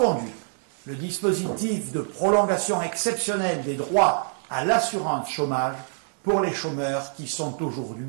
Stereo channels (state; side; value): silent; left; 57 dB below the other